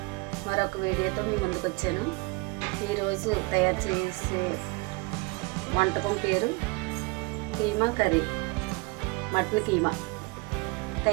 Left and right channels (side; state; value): left; quieter; 27.5 dB